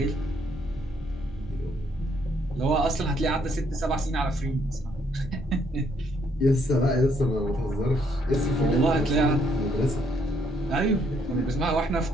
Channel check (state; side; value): normal; both; correlation 0.70